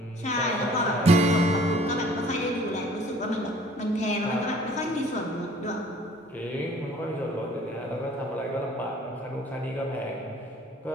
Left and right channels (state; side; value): normal; both; correlation 0.53